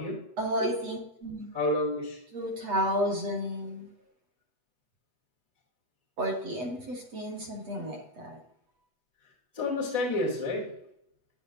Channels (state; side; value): late; left; 8.1 ms